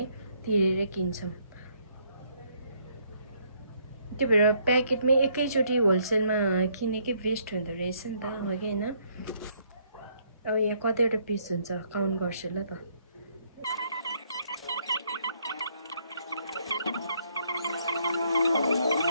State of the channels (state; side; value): inverted; both; correlation -0.69